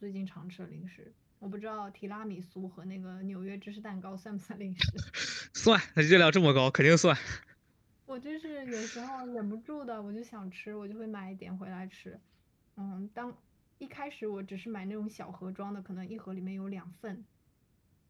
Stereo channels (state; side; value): identical; both; correlation 1.00